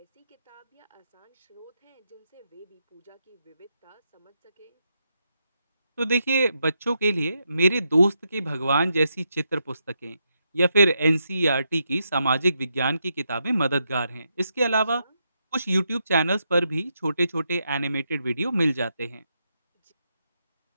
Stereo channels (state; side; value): inverted; both; correlation -0.82